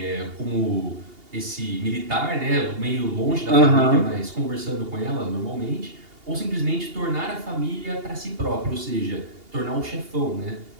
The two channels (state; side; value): late; left; 2.8 ms